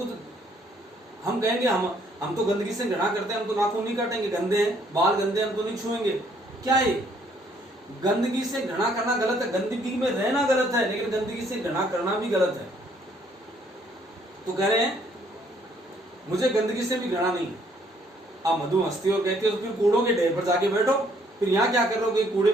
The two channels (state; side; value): normal; both; correlation 0.65